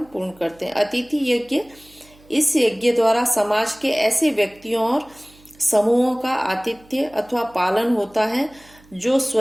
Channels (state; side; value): noise; right; hum, 27 dB below the sound